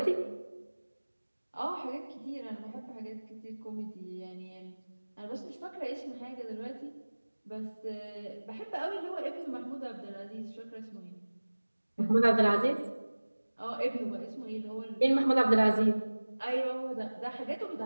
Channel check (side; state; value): both; inverted; correlation -1.00